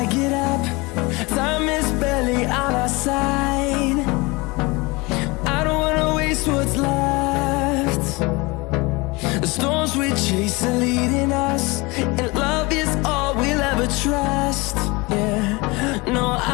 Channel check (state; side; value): quieter; right; 24.8 dB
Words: get up. Time is barely on our side. I don't wanna waste what's left. The storms we chase are leading us, and love is all we'll ever trust. Yeah, no,